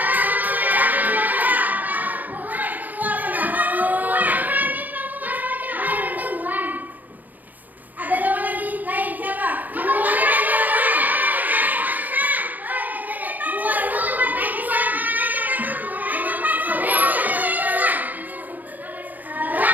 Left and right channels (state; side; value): late; left; 0.083 ms